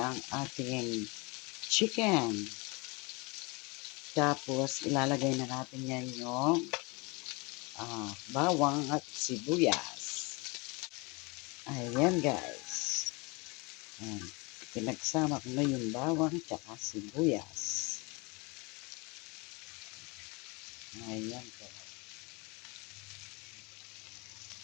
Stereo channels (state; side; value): quieter; right; 27.7 dB